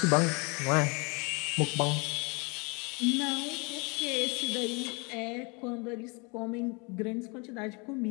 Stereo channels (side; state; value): right; quieter; 30.6 dB